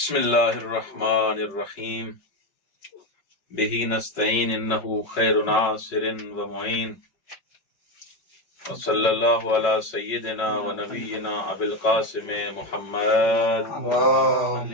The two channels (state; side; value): late; right; 5.3 ms